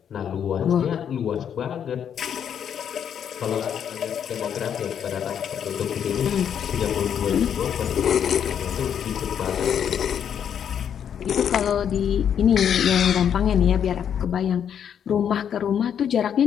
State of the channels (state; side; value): quieter; right; 8.6 dB